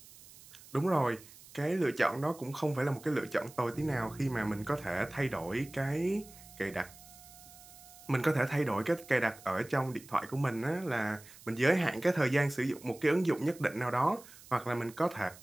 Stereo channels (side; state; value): right; noise; hiss, 20 dB below the sound